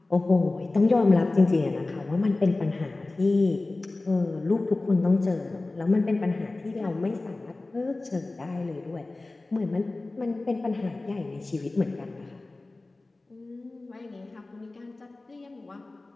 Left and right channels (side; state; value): right; quieter; 3.1 dB